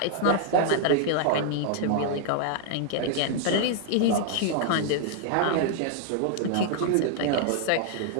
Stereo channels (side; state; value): both; different; correlation 0.00